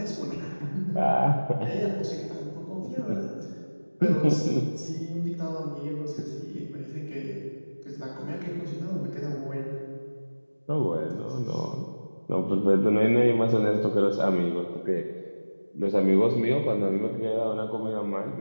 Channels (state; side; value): inverted; both; correlation -1.00